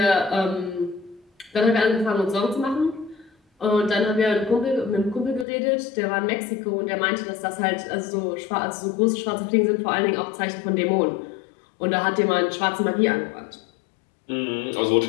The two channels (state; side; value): drops out; right; at 5.5 s